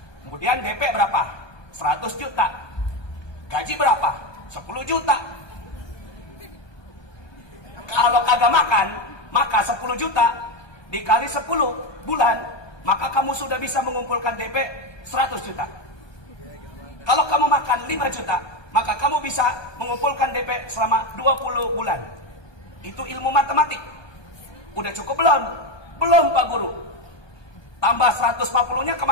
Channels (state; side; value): late; right; 1.2 ms